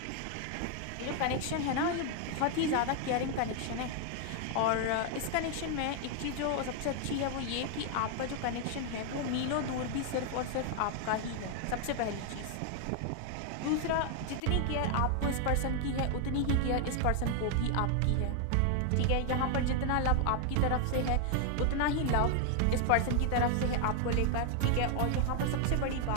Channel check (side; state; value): both; different; correlation 0.00